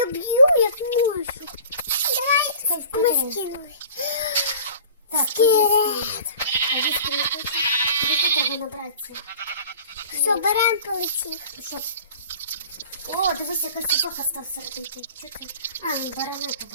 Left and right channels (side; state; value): both; inverted; correlation -0.44